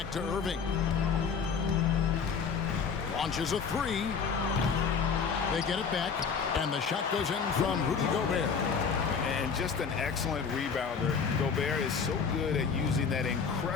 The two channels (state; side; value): quieter; right; 6.0 dB